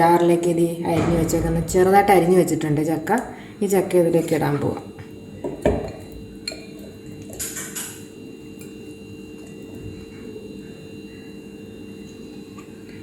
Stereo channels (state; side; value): identical; both; correlation 1.00